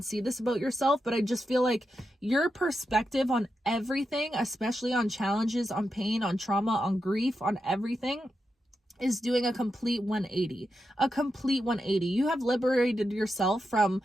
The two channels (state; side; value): normal; both; correlation 0.87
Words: see this about yourself, but I just feel like your perspective on everything, especially on challenges, on pain, on trauma, on grief, on everything, is doing a complete 180. You have liberated yourself from